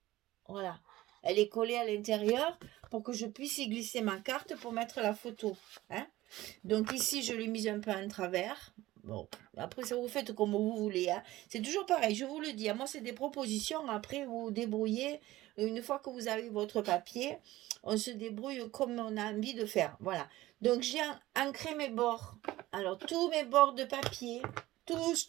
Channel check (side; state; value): left; quieter; 16.8 dB